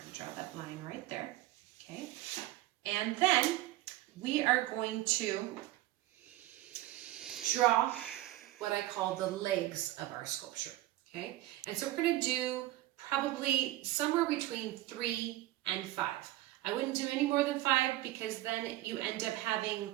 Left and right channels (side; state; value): left; quieter; 16.2 dB